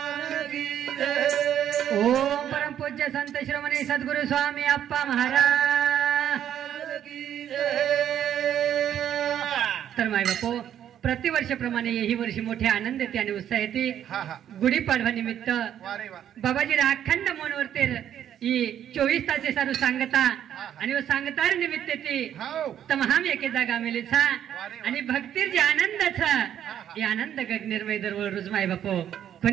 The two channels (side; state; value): left; quieter; 10.2 dB